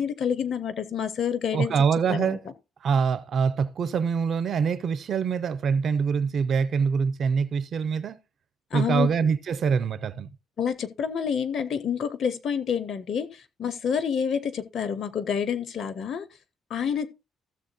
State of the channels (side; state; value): both; normal; correlation 0.73